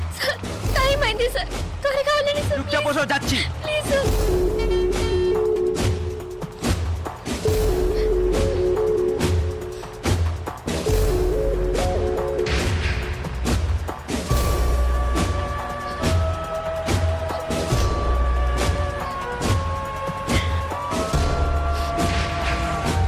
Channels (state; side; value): identical; both; correlation 1.00